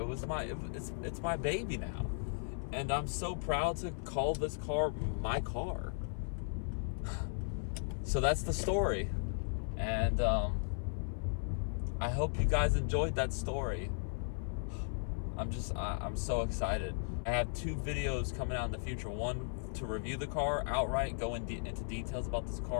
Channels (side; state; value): right; silent; 53 dB below the other